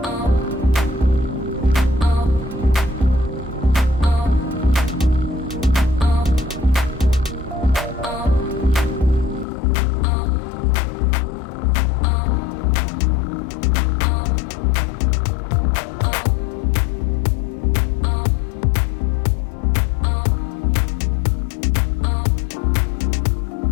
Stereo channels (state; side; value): drops out; right; at 9.5 s